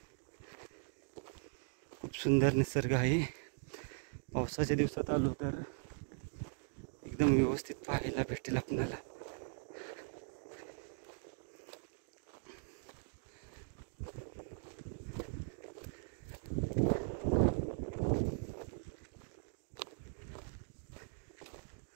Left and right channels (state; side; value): silent; left; digital silence